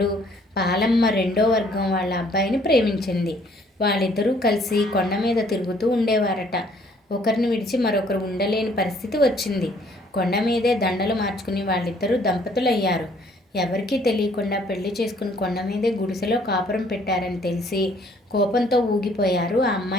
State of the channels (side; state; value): both; normal; correlation 0.61